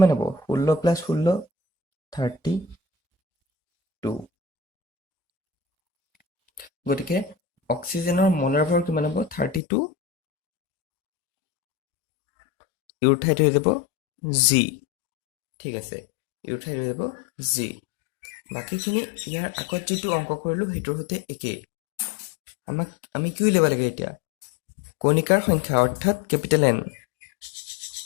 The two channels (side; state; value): right; drops out; at 9.6 s